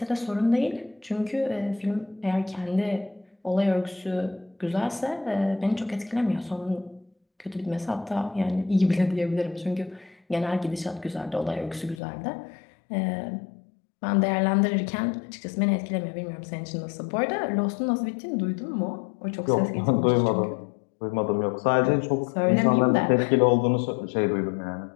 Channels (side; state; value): right; drops out; at 12.0 s